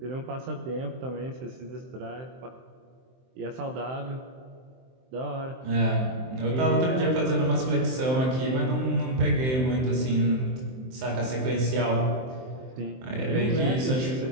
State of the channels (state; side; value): late; left; 23 ms